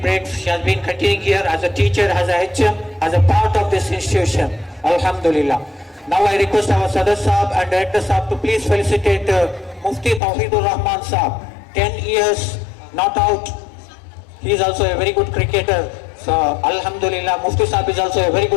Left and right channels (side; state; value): right; drops out; at 10.2 s